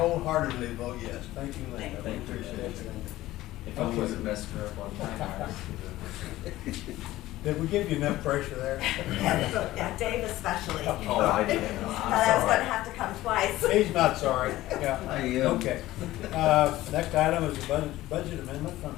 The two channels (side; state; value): right; quieter; 16.2 dB